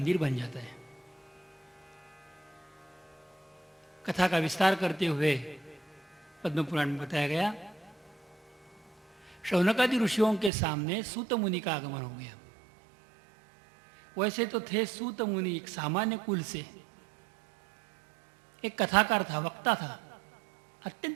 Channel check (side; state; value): left; drops out; at 10.5 s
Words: बन जाता है। कथा का विस्तार करते हुए पद्म पुराण में बताया गया, शौनकादि ऋषियों के सामने सूत मुनि का आगमन हो गया। वैसे तो थे सूत मुनि एक सामान्य कुल से, एक कथाकार था, वक्ता था,